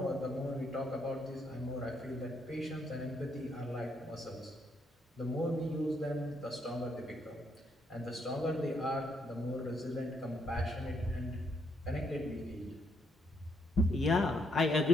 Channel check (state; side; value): normal; both; correlation 0.74